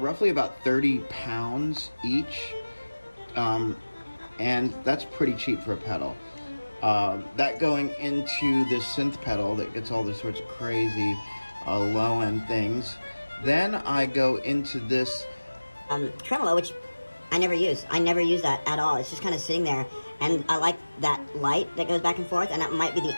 about 30 pounds each. And that's pretty cheap for a pedal. That going into this synth pedal that gets all these sorts of crazy low-end things. Then I go into this tremolo, which I never use. I never use that at all. It's just kind of sitting there, and I like that light that goes back and forth, and that might be the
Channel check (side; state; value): both; inverted; correlation -1.00